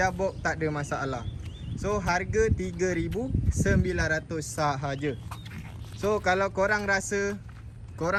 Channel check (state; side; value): identical; both; correlation 1.00